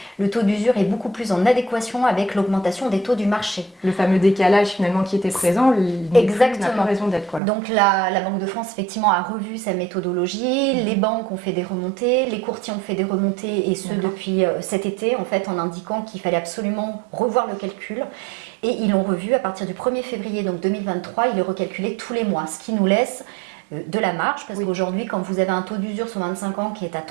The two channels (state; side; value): drops out; left; at 7.4 s